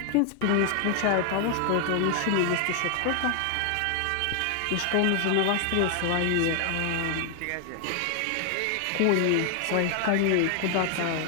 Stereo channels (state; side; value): different; both; correlation 0.00